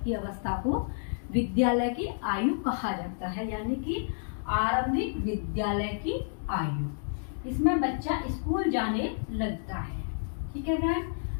की अवस्था को विद्यालय की आयु कहा जाता है, यानी कि आरंभिक विद्यालय की आयु, इसमें बच्चा स्कूल जाने लगता है। ठीक है फ्रेंड्स,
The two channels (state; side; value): silent; right; digital silence